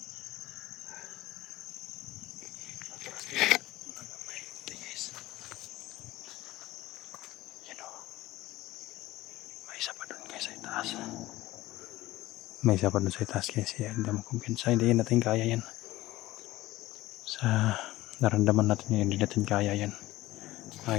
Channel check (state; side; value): quieter; right; 17.3 dB